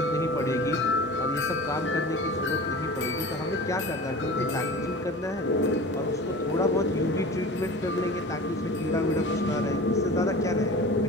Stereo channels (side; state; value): both; normal; correlation 0.37